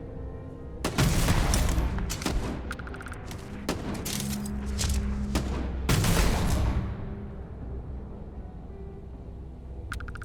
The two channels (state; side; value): identical; both; correlation 1.00